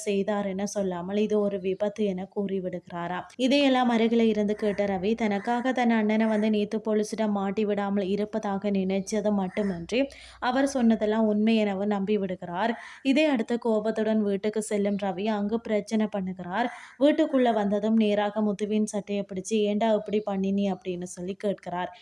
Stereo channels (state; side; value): identical; both; correlation 1.00